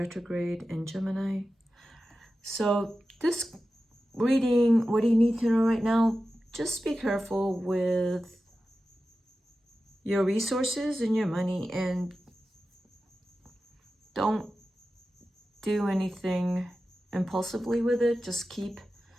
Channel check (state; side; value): normal; both; correlation 0.93